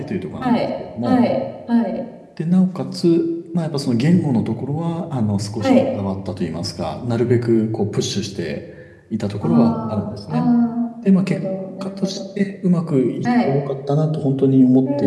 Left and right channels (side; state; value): both; identical; correlation 1.00